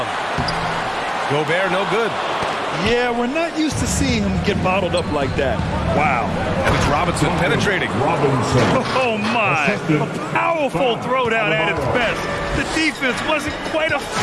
Gobert, no good. Yeah, we're not used to seeing him get bottled up like that. Wow. And it's Robinson penetrating. Oh, my. A powerful throwdown at its best. The defense wasn't quite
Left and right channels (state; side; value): identical; both; correlation 1.00